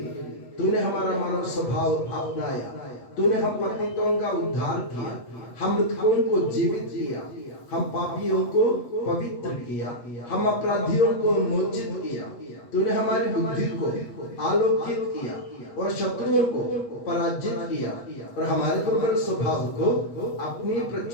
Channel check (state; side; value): late; right; 8.1 ms